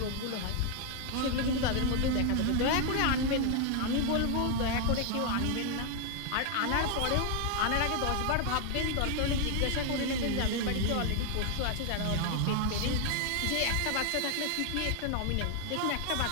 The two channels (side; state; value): both; different; correlation 0.00